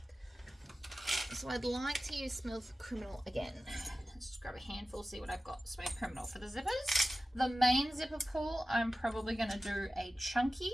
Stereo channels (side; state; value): both; normal; correlation 0.95